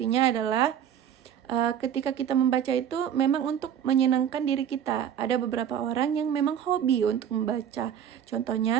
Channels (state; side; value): quieter; left; 9.3 dB